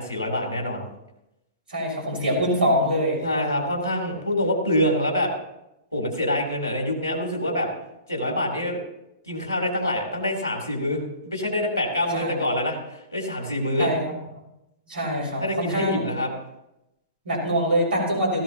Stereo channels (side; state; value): both; inverted; correlation -0.50